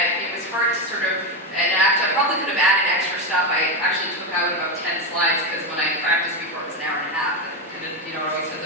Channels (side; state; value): both; normal; correlation 0.12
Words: it was hard to sort of, and actually, I probably could have added extra stuff. I actually took out about 10 slides because when I practiced before, it was an hour and a half. It always says